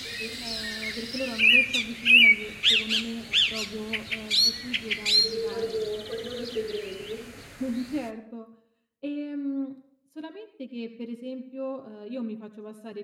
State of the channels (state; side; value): identical; both; correlation 1.00